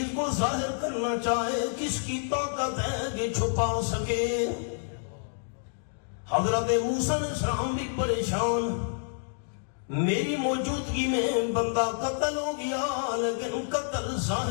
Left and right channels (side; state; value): right; silent; digital silence